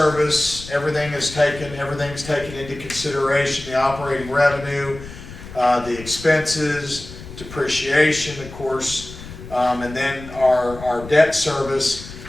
Everything's taken into consideration, the operating revenue, the expenses, depreciation, of course, and then our debt service.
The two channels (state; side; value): noise; left; rumble, 14 dB below the sound